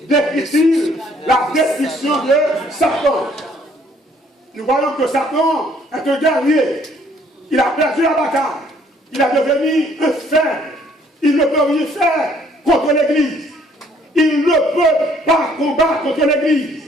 décrit-il la destruction de Satan? Nous voyons que Satan est un guerrier. Il a perdu la bataille. Il est devenu un faible. Il ne peut rien faire contre l'Église. Il ne peut pas combattre contre l'Église.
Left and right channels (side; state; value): both; normal; correlation 0.63